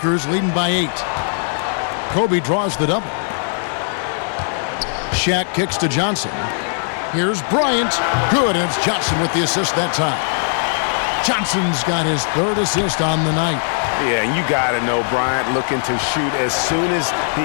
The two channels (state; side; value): silent; right; 57 dB below the other